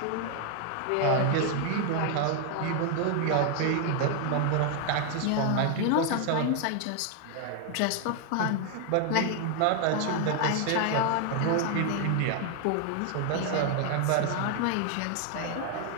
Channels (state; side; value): different; both; correlation 0.00